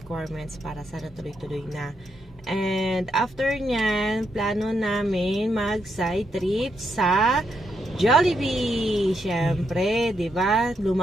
para sana tuloy-tuloy na. And after nyan, plano namin mag-side trip sa Jollibee. Siyempre, di ba?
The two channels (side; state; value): both; normal; correlation 0.80